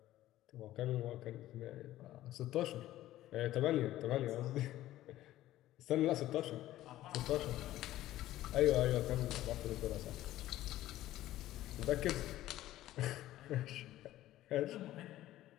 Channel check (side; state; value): right; quieter; 14.6 dB